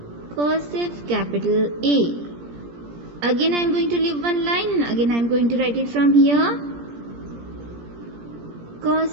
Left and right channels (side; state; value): left; late; 17 ms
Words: Cursive capital A. Again I am going to leave one line and again I am going to write it from here